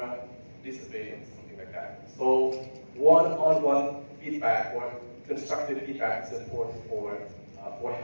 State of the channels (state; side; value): inverted; both; correlation -1.00